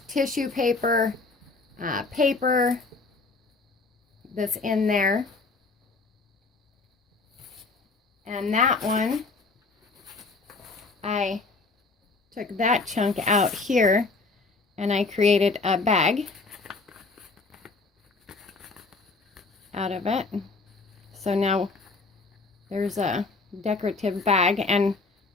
tissue paper, paper that's in there. And that one, I took that chunk out here and I created a bag out of it. So now there's a decorative bag, and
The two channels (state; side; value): quieter; right; 3.8 dB